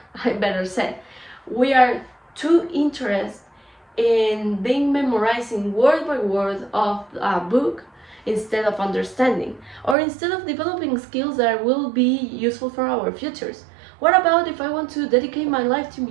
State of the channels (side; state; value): left; drops out; at 10.0 s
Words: I better say, we are too interested in memorizing word by word of a book instead of understanding, or instead of developing skills that will be useful for our futures. What about if I want to dedicate my life to